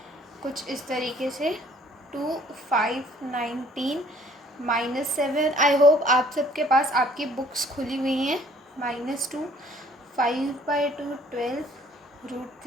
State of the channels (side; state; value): both; normal; correlation 0.58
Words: कुछ इस तरीके से 2, 5, 19, -7। आई होप आप सबके पास आपकी बुक्स खुली हुई हैं। -2, 5/2, 12,